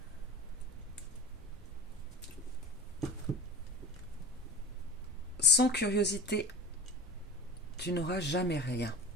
Sans curiosité, tu n'auras jamais rien.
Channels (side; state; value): both; normal; correlation 0.32